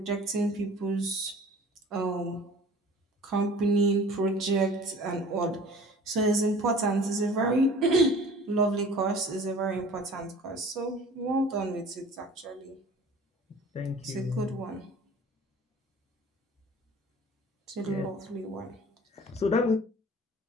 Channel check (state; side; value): normal; both; correlation 0.45